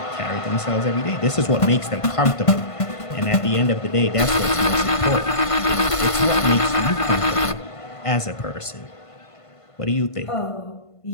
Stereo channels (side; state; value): right; late; 1.5 ms